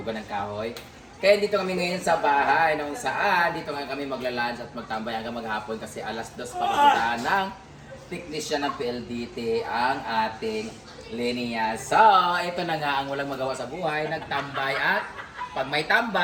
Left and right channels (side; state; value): both; identical; correlation 1.00